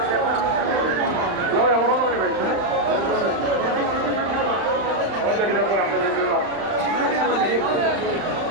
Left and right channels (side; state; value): left; late; 35 ms